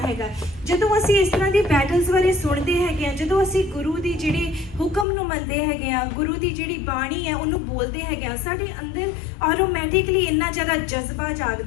ਹੈਗਾ। ਜਦੋਂ ਅਸੀਂ ਇਸ ਤਰ੍ਹਾਂ ਦੀ ਬੈਟਲਸ ਬਾਰੇ ਸੁਣਦੇ ਹੈਗੇ ਆ, ਜਦੋਂ ਅਸੀਂ ਗੁਰੂ ਦੀ ਜਿਹੜੀ ਹੁਕਮ ਨੂੰ ਮੰਨਦੇ ਹੈਗੇ ਆ, ਗੁਰੂ ਦੀ ਜਿਹੜੀ ਬਾਣੀ ਹੈ ਉਹਨੂੰ ਬੋਲਦੇ ਹੈਗੇ ਆ, ਸਾਡੇ ਅੰਦਰ ਆਟੋਮੈਟਿਕਲੀ ਇੰਨਾ ਜ਼ਿਆਦਾ ਜਜ਼ਬਾ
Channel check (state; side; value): drops out; right; at 5.1 s